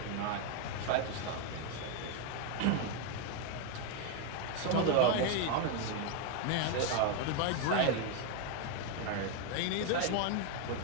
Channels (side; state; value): both; different; correlation 0.01